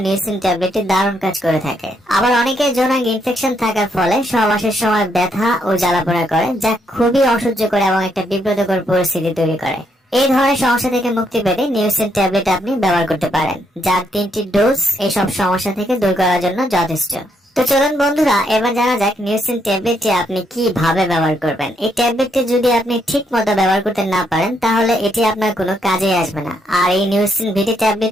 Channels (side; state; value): both; normal; correlation 0.75